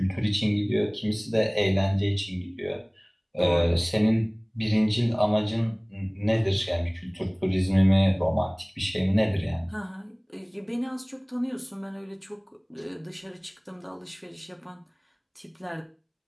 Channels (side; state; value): both; identical; correlation 1.00